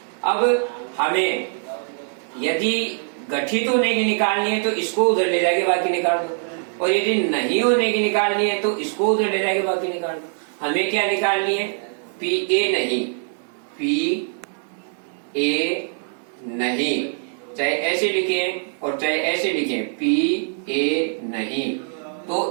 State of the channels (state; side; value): silent; left; 64 dB below the other